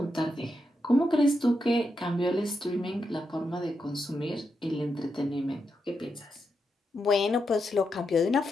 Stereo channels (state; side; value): normal; both; correlation 0.84